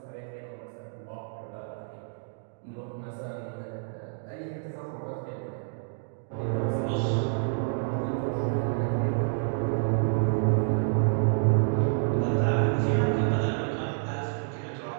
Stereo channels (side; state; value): left; silent; digital silence